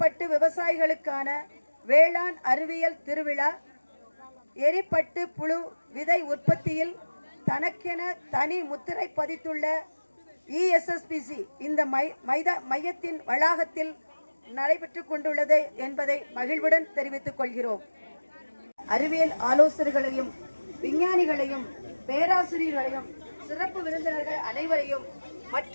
விவசாயிகளுக்கான வேளாண் அறிவியல் திருவிழா எரிப்பட்டு புழு விதை உற்பத்தியில் தனக்கென தனி முத்திரை பதித்துள்ள ESSPC இந்த மையத்தின் வளாகத்தில் நடைபெற்று கொண்டுள்ளது என்பதை மகிழ்வுடன் தெரிவித்துக் கொள்கிறோம். அறிவியல் ஆலோசகர்களையும் விஞ்ஞானிகளையும் பேராசிரியர்களையும் சிறப்பு விருந்தினர்கள் அனைவரையும்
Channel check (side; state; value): both; inverted; correlation -1.00